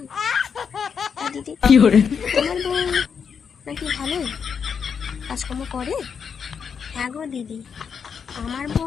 দিদি তোমার বউ নাকি ভালোই কাজকর্ম করে? হ্যাঁ গো দিদি, আমার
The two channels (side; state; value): right; quieter; 6.6 dB